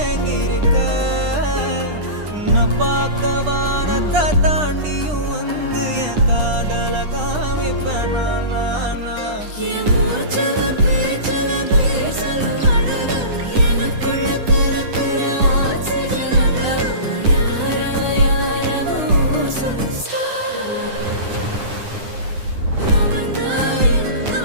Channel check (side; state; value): left; late; 9.9 ms